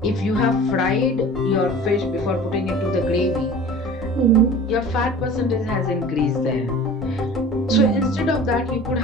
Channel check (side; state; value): both; normal; correlation 0.41